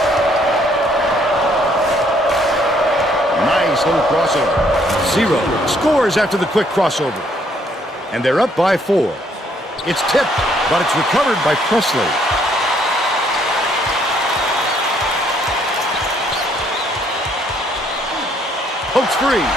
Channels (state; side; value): normal; both; correlation 0.67